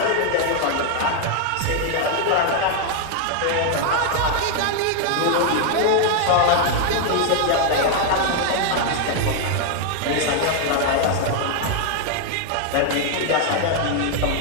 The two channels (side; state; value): both; different; correlation 0.00